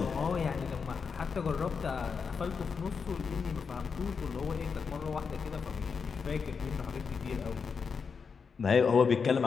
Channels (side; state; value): right; quieter; 5.6 dB